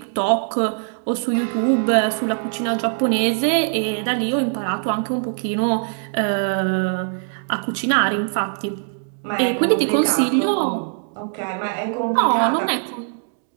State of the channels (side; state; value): left; silent; 57 dB below the other